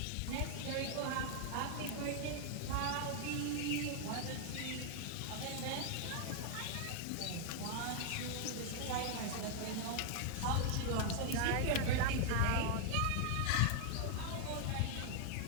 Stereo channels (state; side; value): different; both; correlation 0.00